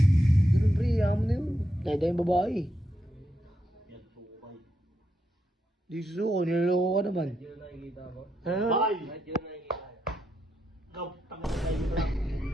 Ganun pre, yaman na yun. Dahil yung babae. Yan, sukay. Di susuko, niloloko ka naman. Hindi na nakikita mo? Ano? Bakay! Kahit yun nakikita niya. Ikaw, tangan na tayo mo lang.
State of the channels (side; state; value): both; normal; correlation 0.83